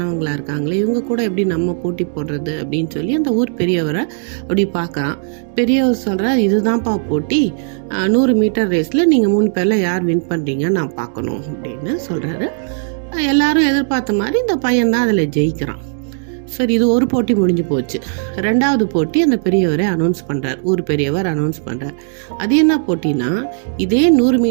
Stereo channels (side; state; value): left; silent; digital silence